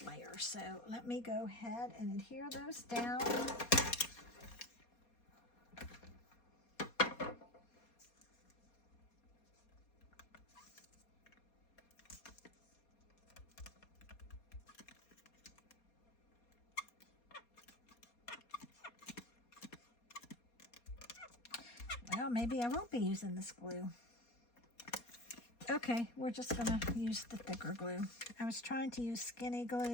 layer. So let me go ahead and adhere those down. Well, maybe I won't be using this glue. Okay, we're just going to use the thicker glue. I was trying to use skinny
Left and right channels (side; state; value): right; late; 4.2 ms